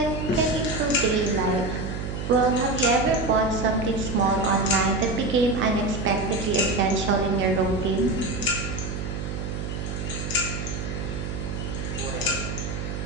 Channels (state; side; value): noise; right; hum, 5 dB below the sound